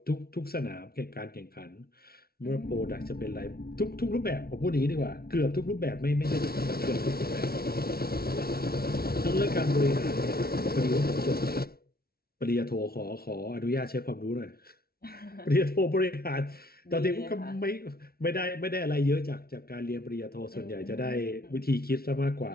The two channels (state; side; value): late; right; 0.44 ms